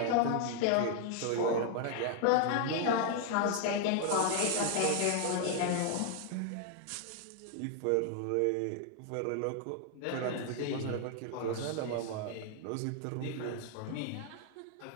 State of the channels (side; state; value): both; different; correlation 0.00